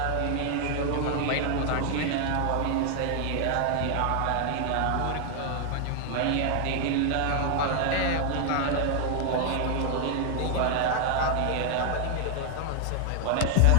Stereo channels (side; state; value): both; different; correlation 0.00